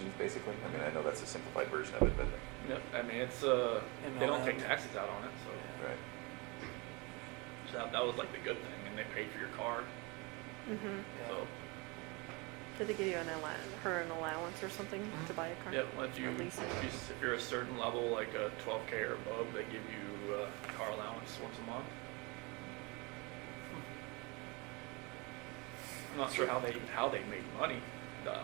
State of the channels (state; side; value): quieter; left; 27.9 dB